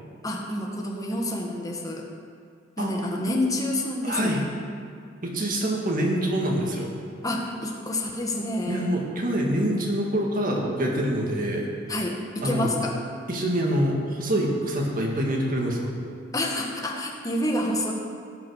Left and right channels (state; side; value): normal; both; correlation 0.58